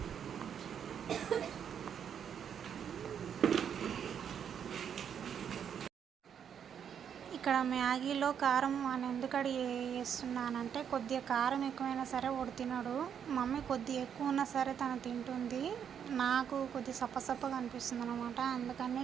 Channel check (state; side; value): quieter; left; 8.2 dB